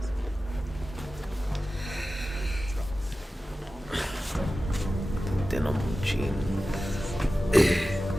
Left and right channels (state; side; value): normal; both; correlation 0.95